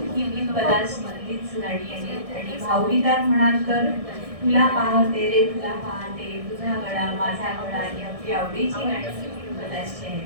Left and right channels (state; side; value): late; left; 1.6 ms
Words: ही भीमपलास मधलीच गाणी आहेत. आणि भावगीतात म्हणाल तर तुला पाहते रे तुला पाहते, तुझा गळा माझा गळा ही आपली आवडीची गाणी भीमपलासची